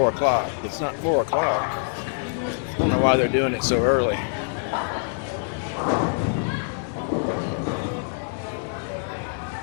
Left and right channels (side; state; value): right; silent; digital silence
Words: o'clock. It's not 4 o'clock. I don't know why they're doing it so early.